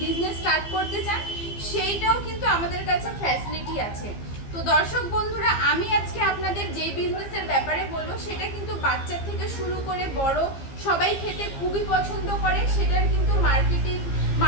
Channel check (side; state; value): right; late; 15 ms